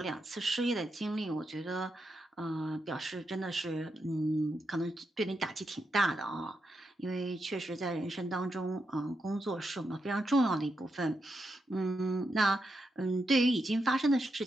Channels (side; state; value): both; normal; correlation 0.84